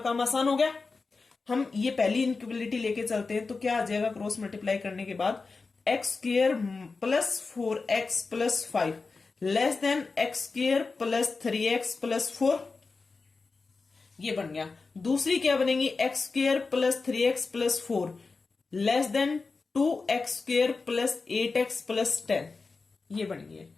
आसान हो गया। हम ये पहली इनइक्वालिटी लेके चलते हैं, तो क्या आ जाएगा क्रॉस मल्टीप्लाई करने के बाद, x square plus 4x plus 5 less than x square plus 3x plus 4, ये बन गया। दूसरी क्या बनेगी, x square plus 3x plus 4 less than 2x square plus 8x plus 10, ये बन गई।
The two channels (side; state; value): right; quieter; 4.2 dB